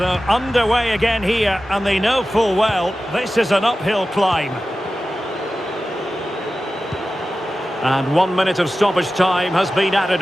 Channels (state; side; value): normal; both; correlation 0.94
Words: underway again here, and they know full well this is an uphill climb. And 1 minute of stoppage time has been added